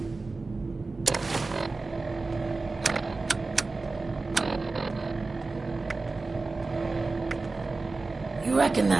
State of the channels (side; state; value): left; quieter; 3.6 dB